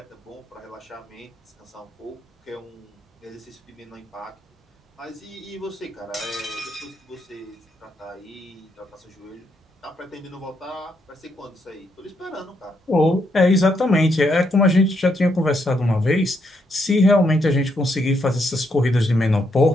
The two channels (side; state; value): both; normal; correlation 0.77